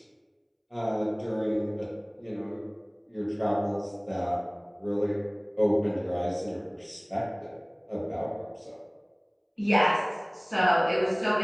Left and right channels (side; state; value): both; identical; correlation 1.00